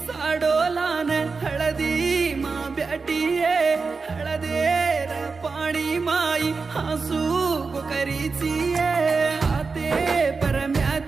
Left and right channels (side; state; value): left; quieter; 4.5 dB